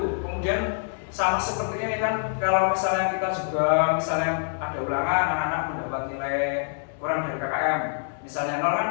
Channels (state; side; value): silent; right; 61 dB below the other